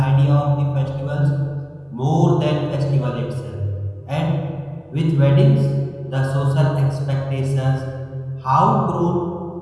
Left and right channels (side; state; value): both; identical; correlation 1.00